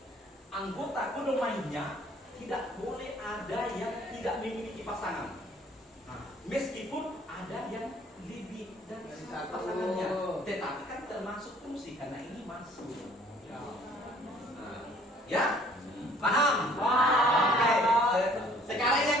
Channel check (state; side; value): normal; both; correlation 0.57